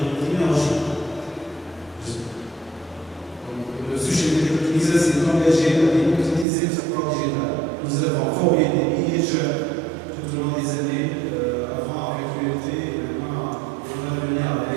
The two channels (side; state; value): left; drops out; at 6.5 s